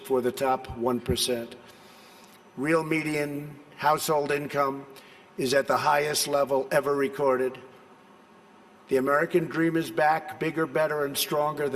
for the top 1%. Real median household income is at the highest level ever recorded. The American dream is back, bigger, better, and stronger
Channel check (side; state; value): both; identical; correlation 1.00